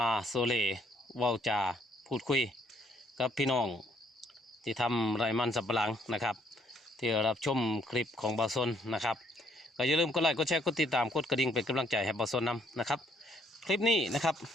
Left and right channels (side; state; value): both; normal; correlation 0.67